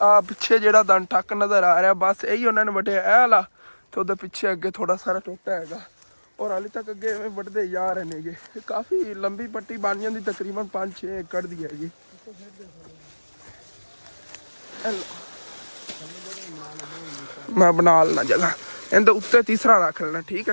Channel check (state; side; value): inverted; both; correlation -1.00